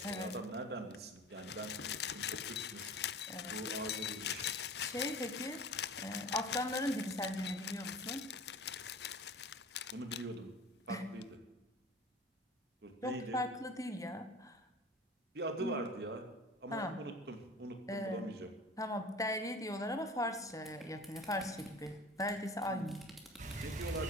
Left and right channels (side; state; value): both; normal; correlation 0.40